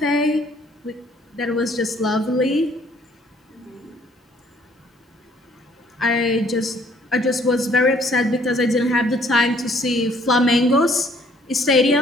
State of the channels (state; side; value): normal; both; correlation 0.61